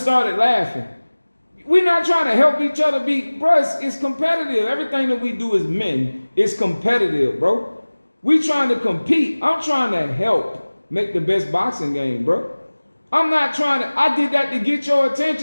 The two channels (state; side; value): inverted; both; correlation -1.00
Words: started laughing. We're not trying to help each other be, bro, it's competitive. Everything that we do as men is competitive, bro. We trying to compete. I'm trying to help make the best boxing game, bro. I'm not trying to, I did that to get your